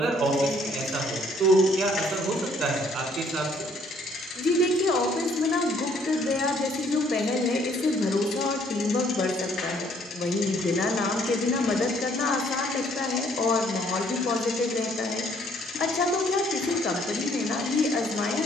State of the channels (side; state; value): both; normal; correlation 0.64